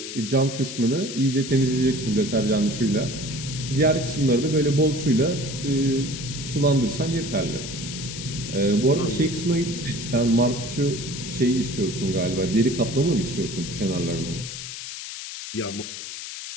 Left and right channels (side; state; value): left; noise; hiss, 9 dB below the sound